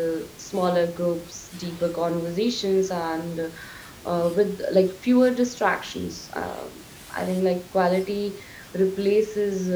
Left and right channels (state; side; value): identical; both; correlation 1.00